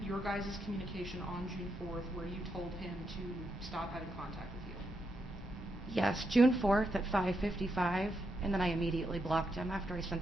your guys' communication on June 4th where you told him to stop having contact with you? Yes, June 4th at 5:55, and then I immediately blocked him after I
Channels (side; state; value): both; normal; correlation 0.82